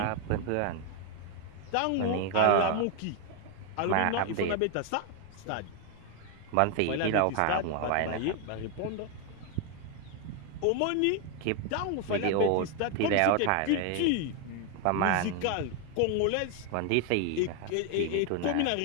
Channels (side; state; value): both; different; correlation 0.01